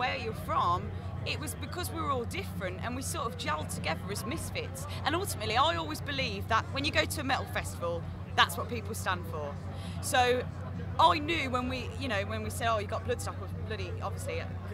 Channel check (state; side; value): identical; both; correlation 1.00